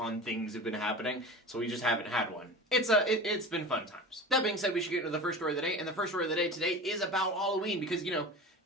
things have been happening, so we just haven't had one. It's been fun times. That being said, we should get into the first story of the day, and the first story of the day today is about Halloween, because,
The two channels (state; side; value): normal; both; correlation 0.33